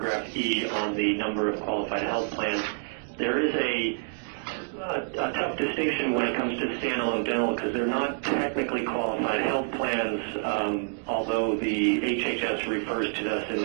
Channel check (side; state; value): left; silent; digital silence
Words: E, on the number of qualified health plans. There is a a tough distinction when it comes to standalone dental because they're not technically qualified health plans, although the HHS refers to us in